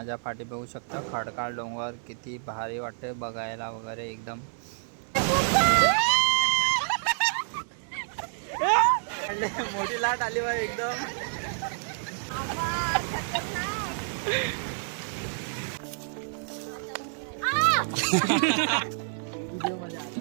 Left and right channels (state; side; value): silent; left; digital silence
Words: पाठी बघू शकता खडकाळ डोंगर किती भारी वाटते बघायला वगैरे एकदम. मोठी लाट आली बा एकदम.